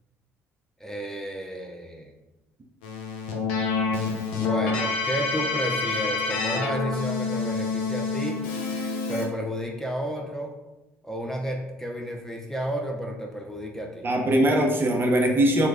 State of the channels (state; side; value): normal; both; correlation 0.51